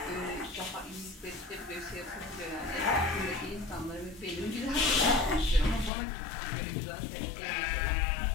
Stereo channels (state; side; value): drops out; right; at 5.9 s